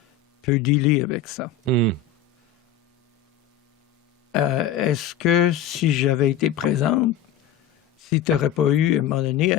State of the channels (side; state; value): right; quieter; 8.5 dB